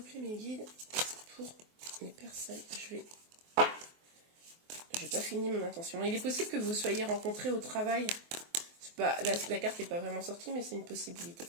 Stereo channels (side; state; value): left; late; 24 ms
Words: mes guides, pour les personnes, j'ai pas fini mon intention. Il est possible que vous soyez rencontrés au travail. Pas, la carte n'est pas vraiment sortie, mais c'est une possibilité.